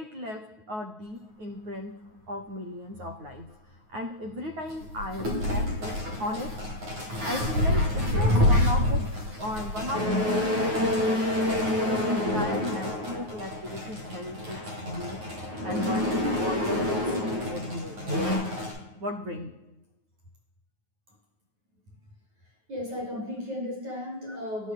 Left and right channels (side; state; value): left; late; 9.4 ms